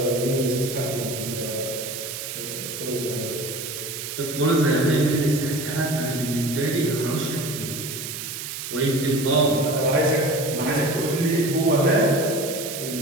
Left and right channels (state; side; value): noise; right; hiss, 7 dB below the sound